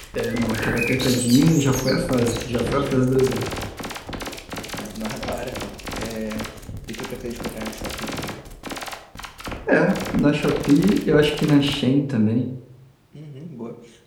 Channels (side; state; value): both; identical; correlation 1.00